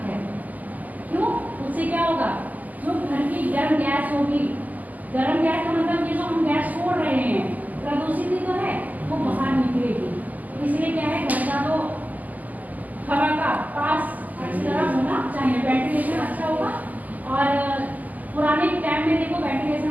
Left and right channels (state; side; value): late; left; 0.080 ms